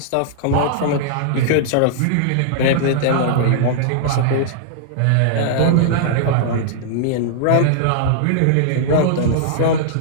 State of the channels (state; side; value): different; both; correlation -0.01